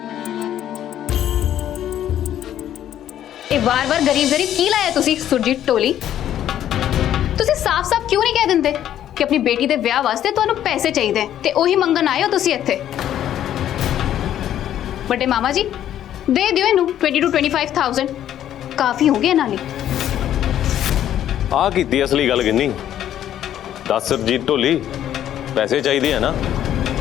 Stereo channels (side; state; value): right; quieter; 11.2 dB